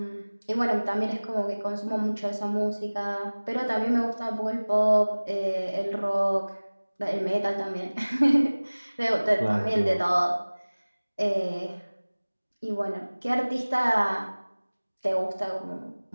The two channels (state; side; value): inverted; both; correlation -1.00